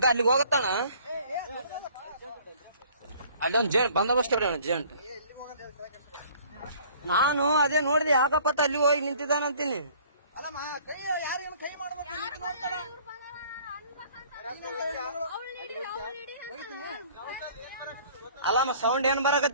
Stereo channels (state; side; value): inverted; both; correlation -0.54